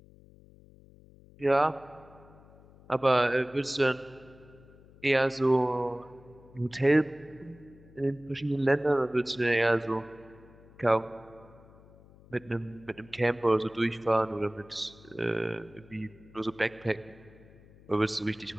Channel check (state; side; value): noise; left; hum, 24 dB below the sound